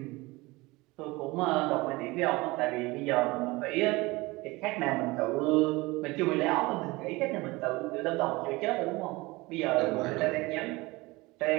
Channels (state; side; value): quieter; left; 22.2 dB